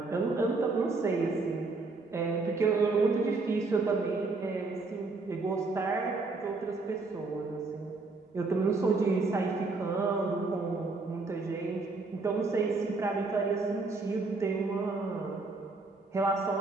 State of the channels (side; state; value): left; quieter; 3.7 dB